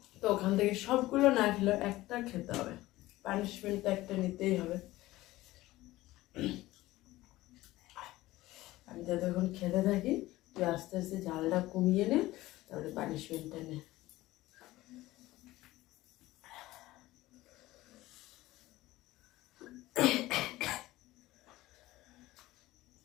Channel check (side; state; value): right; quieter; 17.5 dB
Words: তো ওখান থেকে সবগুলো না খেলে একটা খেতে হবে, পানিশমেন্টটা একটা নিতেই হবে। আমি তো তখন খেতে থাকি, তুই আস্তে আস্তে ঝালটা কমিয়ে নে, তারপরে পানিশমেন্টটা নে।